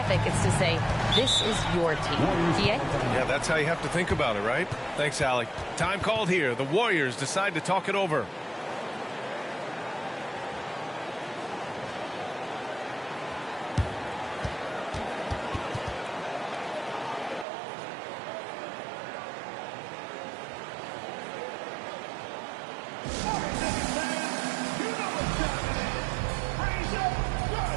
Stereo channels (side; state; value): left; drops out; at 17.4 s